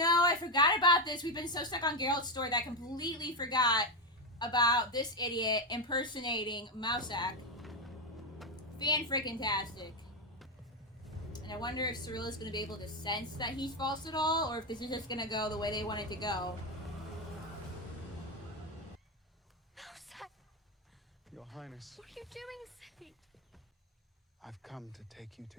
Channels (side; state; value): both; normal; correlation 0.08